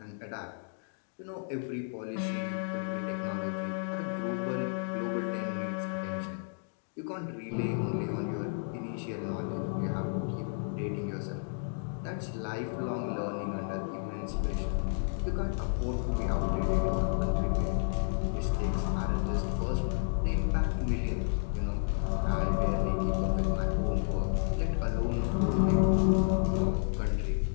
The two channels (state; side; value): silent; right; digital silence